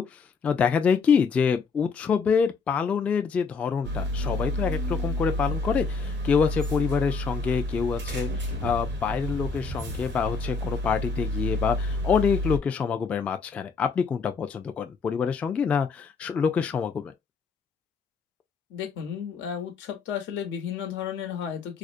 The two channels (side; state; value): right; quieter; 5.0 dB